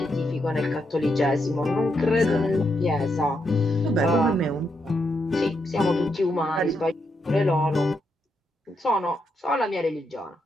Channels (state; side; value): normal; both; correlation 0.81